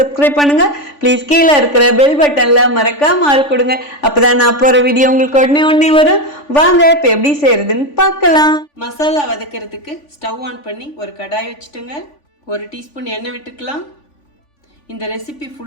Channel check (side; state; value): right; late; 3.5 ms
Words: பண்ணுங்க. ப்ளீஸ் கீழே இருக்கிற பெல் பட்டன்ல மறக்காம ஆள் கொடுங்க. அப்பதான் நான் போற வீடியோ உங்களுக்கு உடனே வரும். வாங்க இப்ப எப்படி செய்யறதுன்னு பார்க்கலாம். மசாலா வதக்கிறதுக்கு ஸ்டவ் ஆன் பண்ணி ஒரு கடாய் வச்சுட்டுங்க. 1 டீஸ்பூன் எண்ணெய் விட்டுக்கலாம். இந்த ரெசிபி